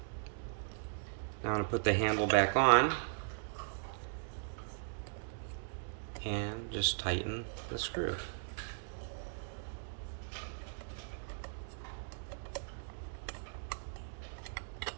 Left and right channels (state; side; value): silent; left; digital silence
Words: Now I'm going to put the handle back on and just tighten the screw.